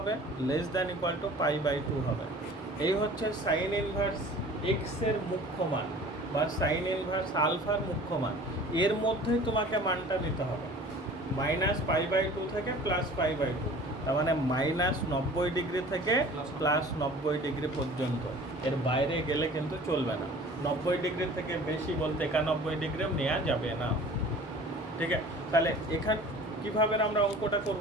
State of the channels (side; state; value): both; normal; correlation 0.45